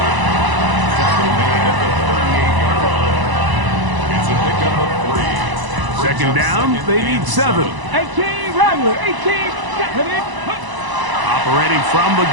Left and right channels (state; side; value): late; left; 1.0 ms